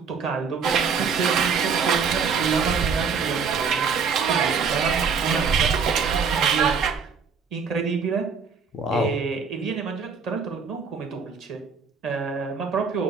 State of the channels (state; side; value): quieter; left; 5.7 dB